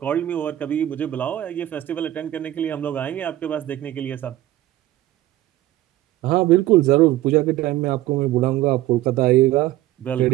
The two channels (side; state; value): left; quieter; 14.8 dB